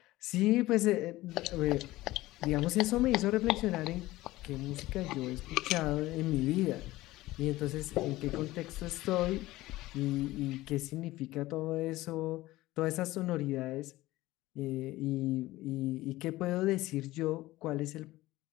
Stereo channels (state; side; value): quieter; right; 17.7 dB